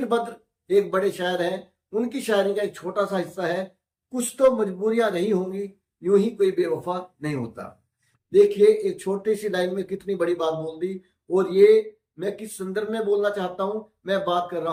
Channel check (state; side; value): identical; both; correlation 1.00